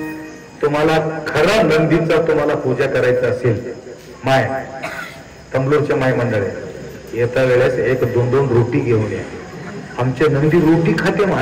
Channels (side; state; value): both; identical; correlation 1.00